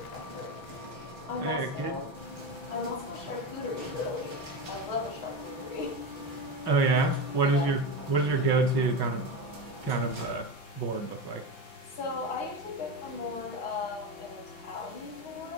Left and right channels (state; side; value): late; right; 6.1 ms